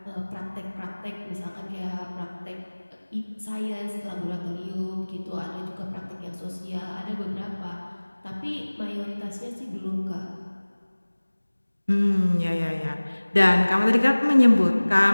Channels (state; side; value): inverted; both; correlation -1.00